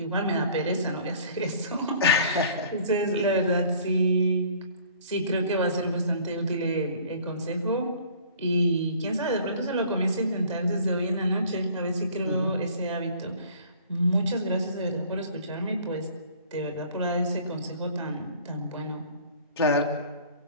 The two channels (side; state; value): both; inverted; correlation -0.51